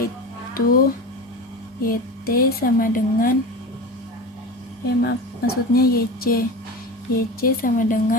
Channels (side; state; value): both; normal; correlation 0.29